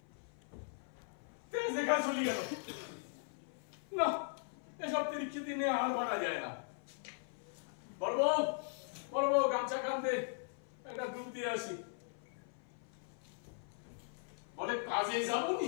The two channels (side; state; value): right; silent; 51 dB below the other